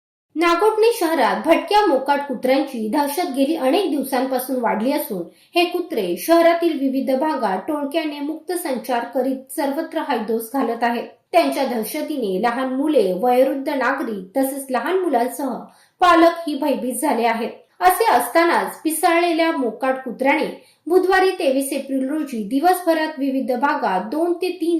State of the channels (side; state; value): both; identical; correlation 1.00